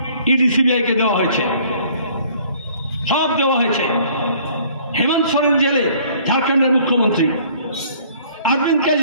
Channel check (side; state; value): both; inverted; correlation -0.56